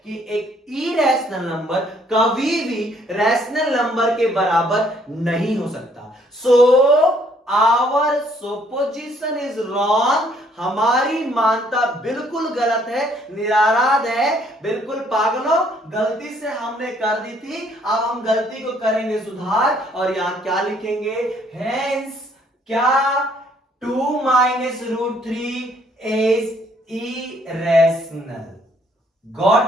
कि एक इरेशनल नंबर कभी भी रैशनल नंबर के बराबर नहीं हो सकता। So our supposition is wrong, हमारी मानता बिल्कुल गलत है, निराराध है, बिल्कुल पागलों, गलती से हमने कर दी थी, अब हम गलती को करेंगे सुधार। और यहां क्या लिखेंगे, हेंस क्या, 2 - √3 is irrational।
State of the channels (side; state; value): both; normal; correlation 0.65